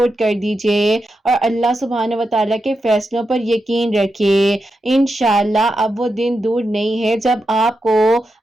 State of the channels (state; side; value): normal; both; correlation 0.88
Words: کر دیجیے اور اللہ سبحانہ و تعالیٰ کے فیصلوں پر یقین رکھیے۔ انشاءاللہ اب وہ دن دور نہیں ہے جب آپ کو